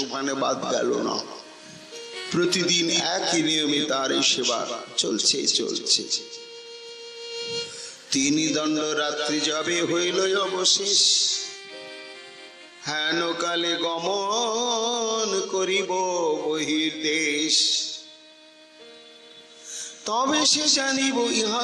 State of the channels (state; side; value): identical; both; correlation 1.00